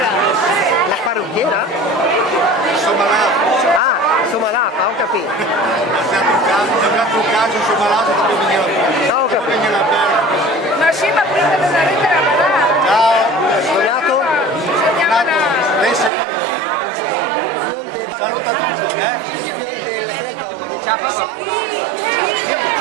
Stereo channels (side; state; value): left; drops out; at 16.1 s